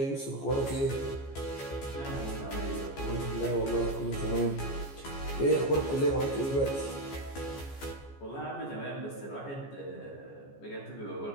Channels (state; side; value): late; right; 14 ms